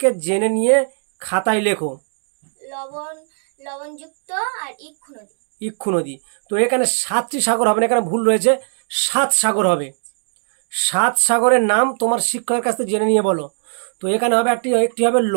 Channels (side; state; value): left; silent; digital silence